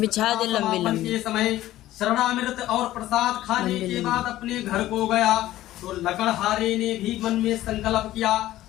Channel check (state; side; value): quieter; right; 14.8 dB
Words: के समय शरणामृत और प्रसाद खाने के बाद अपने घर को गया तो लकड़हारे ने भी मन में संकल्प किया